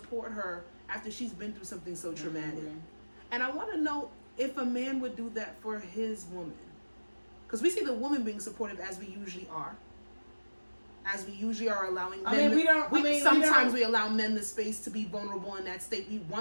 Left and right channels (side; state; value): both; inverted; correlation -1.00